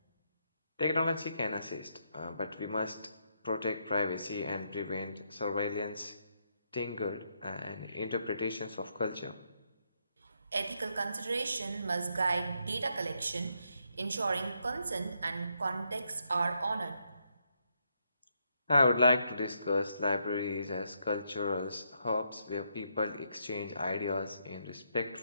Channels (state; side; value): inverted; both; correlation -0.78